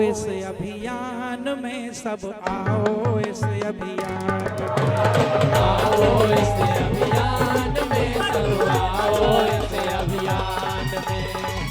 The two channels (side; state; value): both; identical; correlation 1.00